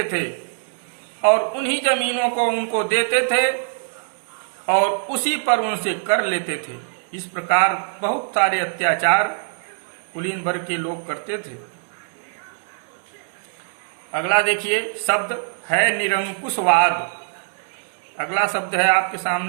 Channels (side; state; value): left; silent; 62 dB below the other